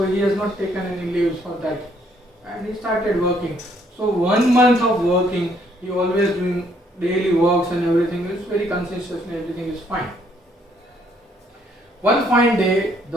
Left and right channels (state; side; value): normal; both; correlation 0.68